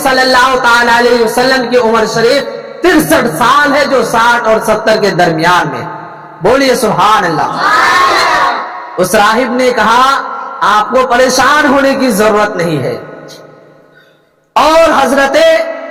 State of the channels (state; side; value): identical; both; correlation 1.00